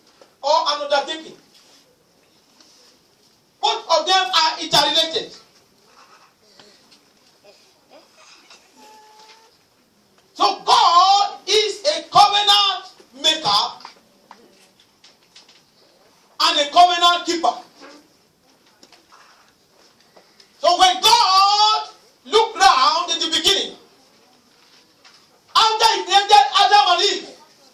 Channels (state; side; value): identical; both; correlation 1.00